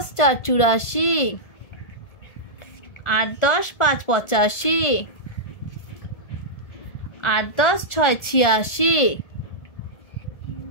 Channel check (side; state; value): right; late; 1.7 ms